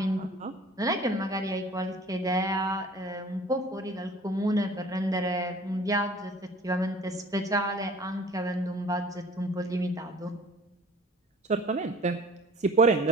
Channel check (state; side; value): normal; both; correlation 0.48